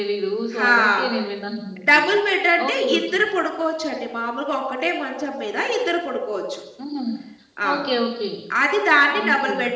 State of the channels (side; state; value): both; identical; correlation 1.00